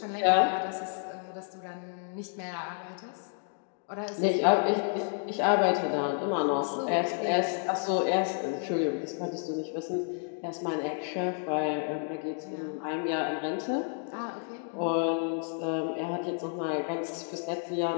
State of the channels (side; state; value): right; silent; 56 dB below the other